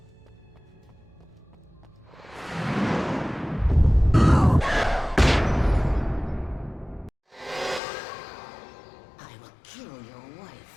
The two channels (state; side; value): drops out; right; at 7.8 s